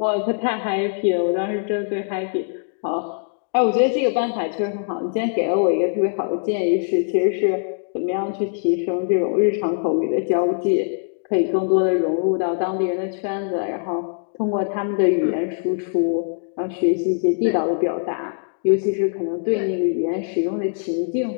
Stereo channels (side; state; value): right; silent; digital silence